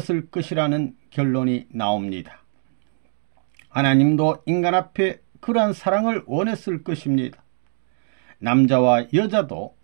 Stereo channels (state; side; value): silent; left; digital silence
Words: 것이라는 결론이 나옵니다. 하나님도 인간 앞에 그러한 사랑을 원했을 것입니다. 남자와 여자도